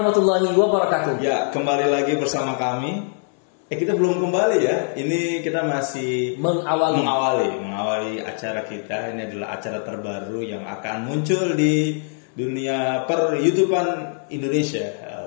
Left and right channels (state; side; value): silent; right; 64 dB below the other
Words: wabarakatuh. Ya, kembali lagi bersama kami. Kita belum kembali ya. Ini kita masih mengawali acara kita. Ini adalah acara terbaru yang akan muncul di dunia per-YouTubean Indonesia.